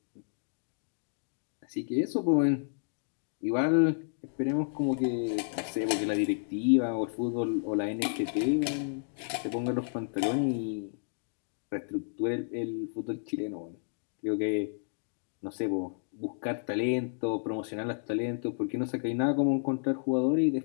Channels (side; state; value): right; silent; digital silence